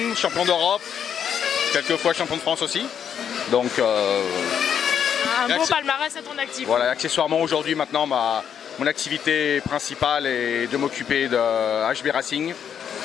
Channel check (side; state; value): right; quieter; 8.3 dB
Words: champion d'Europe, quelques fois champion de France aussi. Donc, un beau palmarès à ton actif. Voilà, accessoirement aujourd'hui maintenant mon activité principale est de m'occuper de HB Racing